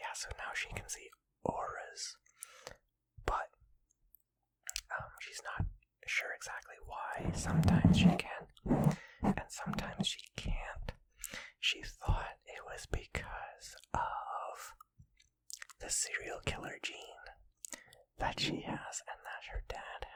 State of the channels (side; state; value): both; identical; correlation 1.00